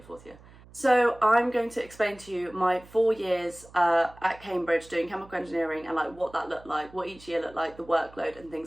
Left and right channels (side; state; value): right; noise; hum, 23 dB below the sound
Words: 4th year. So I'm going to explain to you my 4 years at Cambridge doing chemical engineering, and what that looked like, what each year looked like, the workload and